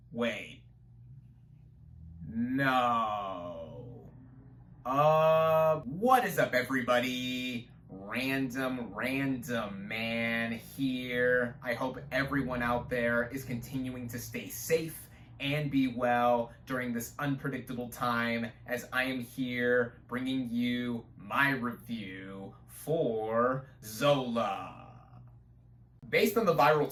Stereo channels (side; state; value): both; identical; correlation 1.00